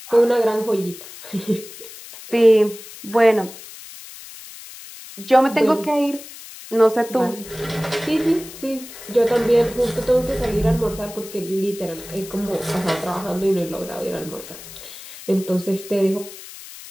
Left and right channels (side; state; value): left; noise; hiss, 15 dB below the sound